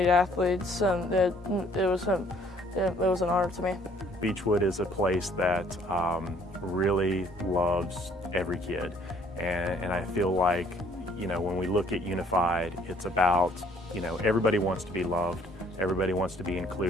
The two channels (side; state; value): both; normal; correlation 0.61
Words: athletes, and it was an honor to me. Beechwood is a place that really loves every kid, and I feel like, you know, when we look at Unified, it's about, you know, everybody wants to be loved, everybody wants to be